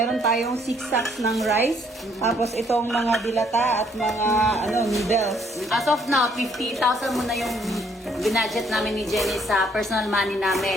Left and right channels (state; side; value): normal; both; correlation 0.66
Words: tayong 6 sacks ng rice, tapos itong mga dilata at mga noodles. As of now, 50,000 muna yung binudget namin ni Jenny sa personal money